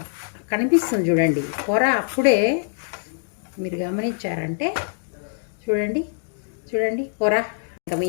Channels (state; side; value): silent; right; digital silence